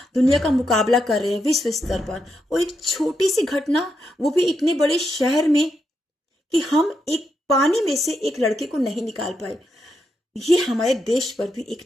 दुनिया का मुकाबला कर रहे हैं विश्व स्तर पर, और एक छोटी सी घटना, वो भी इतने बड़े शहर में, कि हम एक पानी में से एक लड़के को नहीं निकाल पाए, ये हमारे देश पर भी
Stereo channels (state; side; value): normal; both; correlation 0.83